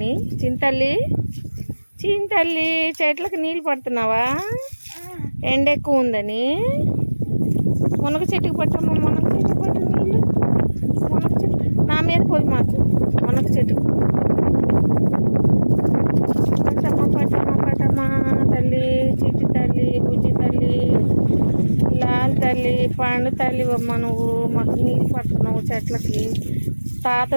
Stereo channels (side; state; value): both; inverted; correlation -1.00